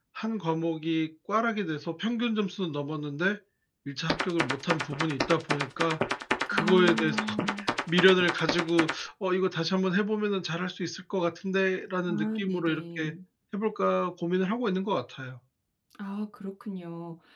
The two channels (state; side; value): identical; both; correlation 1.00